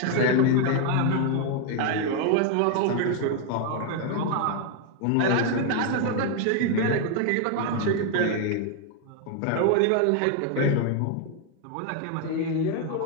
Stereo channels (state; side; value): different; both; correlation 0.00